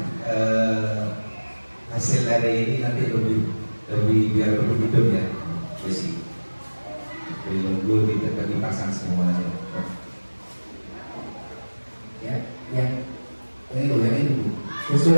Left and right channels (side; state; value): both; inverted; correlation -1.00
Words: hasil dari ini nanti lebih biar lebih hidup ya, besi nunggu dipasang semuanya ya, yang ini